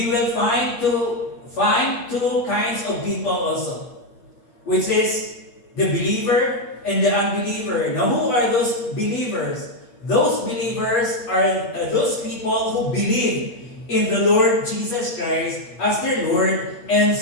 will find two kinds of people also, which is the believer and the unbeliever. Now, who are those believers? Those believers are those people who believe in the Lord Jesus Christ as their Lord and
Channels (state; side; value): late; right; 8.4 ms